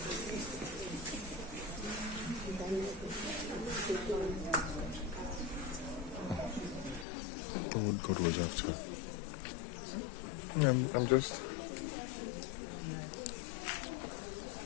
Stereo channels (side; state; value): right; drops out; at 7.1 s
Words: What God was after. I'm just.